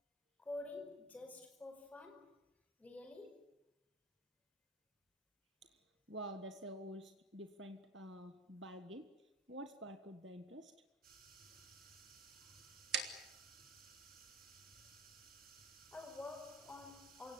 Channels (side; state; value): both; normal; correlation 0.41